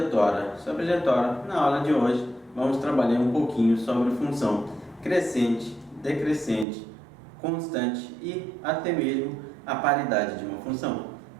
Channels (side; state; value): left; drops out; at 6.7 s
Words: sobrejetória. Na aula de hoje vamos trabalhar um pouquinho sobre função crescente, decrescente, constante e até mesmo a paridade de uma função.